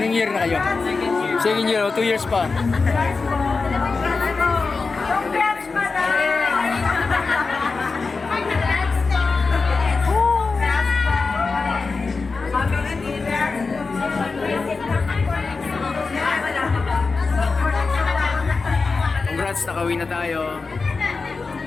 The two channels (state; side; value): quieter; right; 4.3 dB